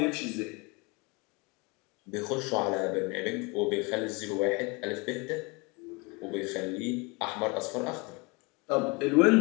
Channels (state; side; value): quieter; right; 28.0 dB